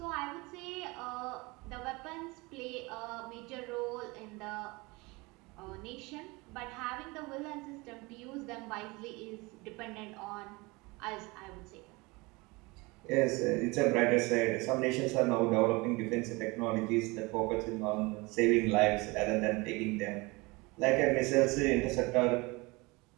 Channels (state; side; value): quieter; left; 24.8 dB